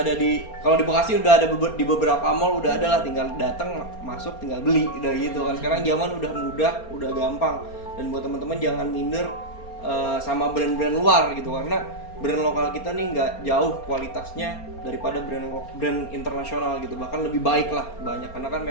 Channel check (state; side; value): late; right; 4.3 ms